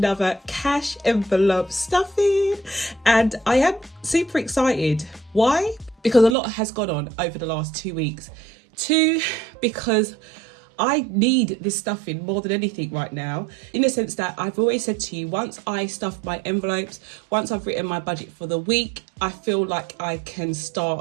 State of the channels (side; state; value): left; drops out; at 6.4 s